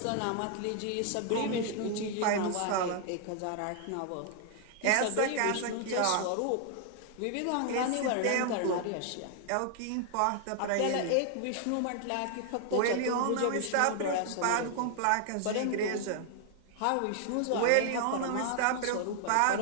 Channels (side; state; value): both; different; correlation 0.00